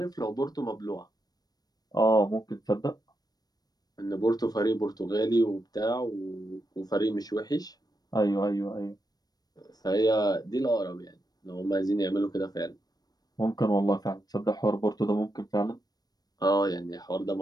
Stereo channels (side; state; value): right; late; 0.19 ms